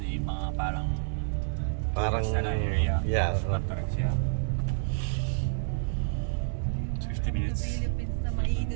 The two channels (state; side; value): silent; left; digital silence